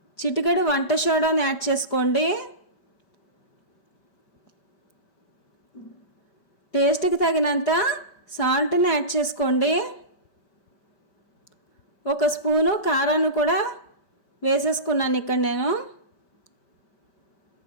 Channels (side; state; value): right; late; 5.1 ms